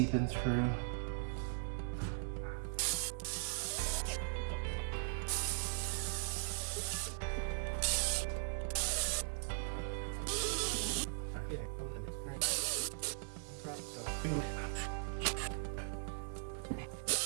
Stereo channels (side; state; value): left; silent; 51 dB below the other